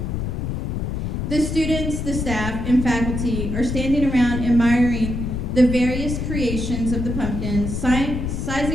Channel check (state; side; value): noise; left; rumble, 3 dB below the sound